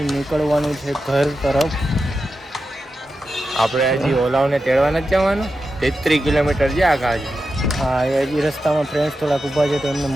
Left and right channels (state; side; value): normal; both; correlation 0.90